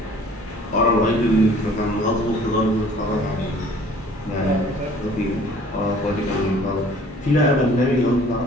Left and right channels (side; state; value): both; normal; correlation 0.52